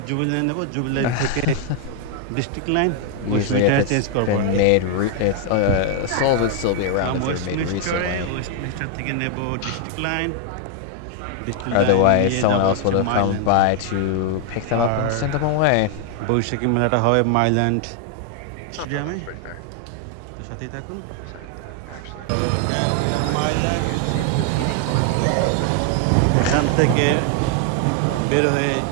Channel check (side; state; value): both; different; correlation 0.00